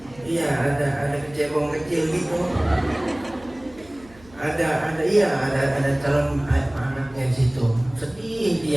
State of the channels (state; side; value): noise; right; hum, 24 dB below the sound